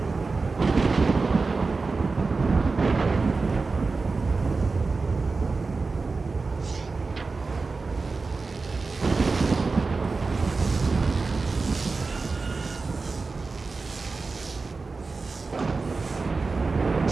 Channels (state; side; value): quieter; left; 4.1 dB